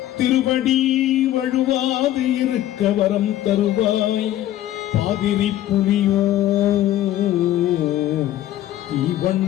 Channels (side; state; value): right; quieter; 13.3 dB